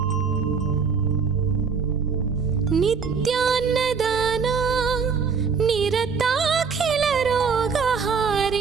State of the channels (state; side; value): quieter; left; 5.7 dB